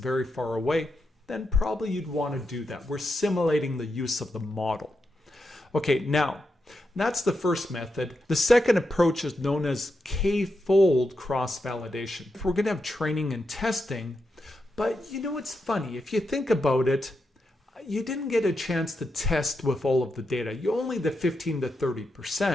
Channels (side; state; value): both; normal; correlation 0.85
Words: far away, then probably you'd want to do that. We're simulating the use of the model. Okay, now, that's the first method. The second approach is known as k-fold cross-validation. We're going to have training and testing, but you know what's funny? If you think about it, you didn't get a chance to test with all of the data. You only the 15 to